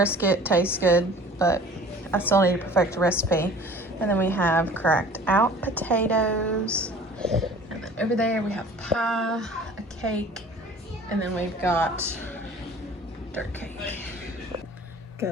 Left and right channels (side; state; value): both; normal; correlation 0.47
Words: tastes good, but I still need to perfect the recipe. And then we have cracked out potatoes. And then over there we have pie, a cake, and then we've got dirt cake.